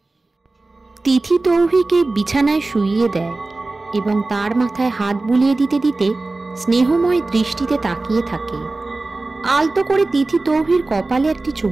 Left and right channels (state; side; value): quieter; left; 3.2 dB